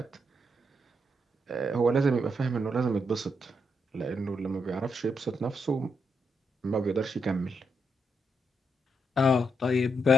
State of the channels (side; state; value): both; normal; correlation 0.80